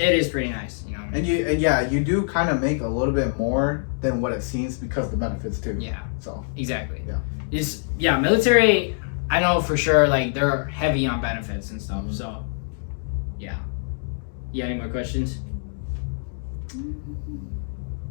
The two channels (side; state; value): right; silent; digital silence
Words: pretty nice, you know. And you do kind of make a little bit more than what it seems because of the benefits too. Yeah. So. Exactly. Yeah. Military. I know for sure, like they're heavy on benefits and stuff. So. Yeah. You got any more questions?